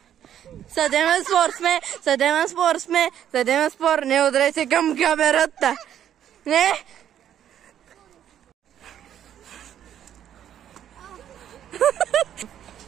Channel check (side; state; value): left; quieter; 10.3 dB